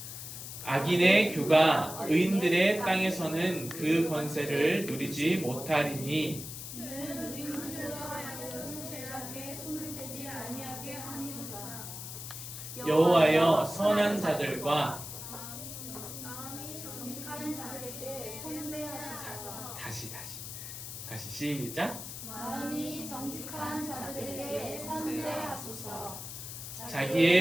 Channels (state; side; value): noise; left; hiss, 9 dB below the sound